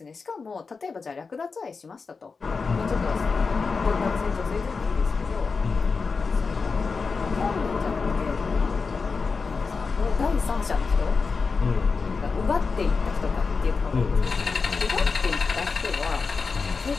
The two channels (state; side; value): quieter; right; 4.7 dB